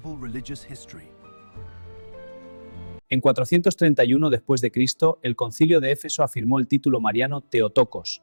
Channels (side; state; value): both; inverted; correlation -1.00